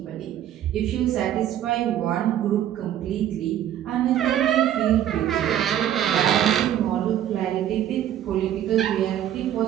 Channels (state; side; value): quieter; left; 11.1 dB